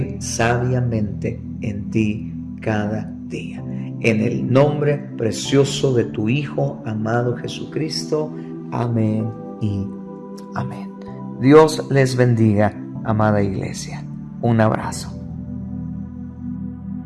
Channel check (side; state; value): both; identical; correlation 1.00